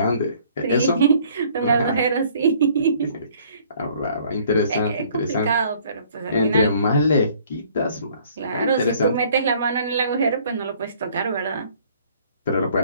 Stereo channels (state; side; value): inverted; both; correlation -0.58